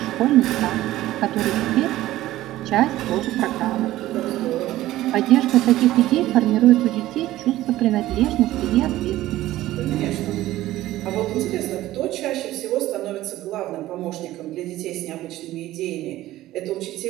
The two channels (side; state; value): left; quieter; 15.4 dB